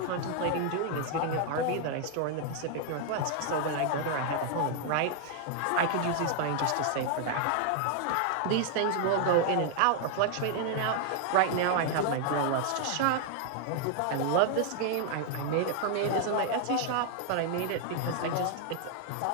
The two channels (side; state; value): both; different; correlation 0.00